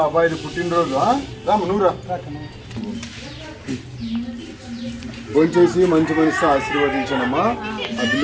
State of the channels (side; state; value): both; identical; correlation 1.00